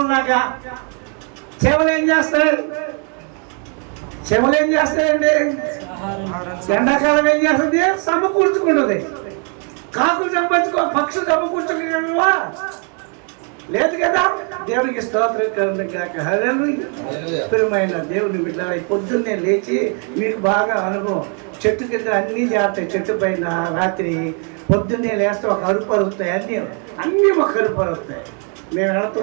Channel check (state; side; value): quieter; left; 39.5 dB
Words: సేవలు ఏం చేస్తాయండి? ఎండాకాలం ఏం చేస్తుంది? సమకూర్చుకుంటుంది. కాకులు పక్షులు సమకూర్చుకోగలవా? లేదు కదా. దేవునికి స్తోత్రం కాక. ప్రియమైన దేవుని బిడ్డ, పొద్దున్నే లేచి మీకు బాగా అనుభవం, చెట్టు కింద అన్నీ చేస్తాయి. చెట్టు పైన రాత్రి పొద్దున్నే లేస్తే ఒక అరుపు అరుగుతాయి, అన్నీ ఒక అరుపు అరుగుతాయి. మేము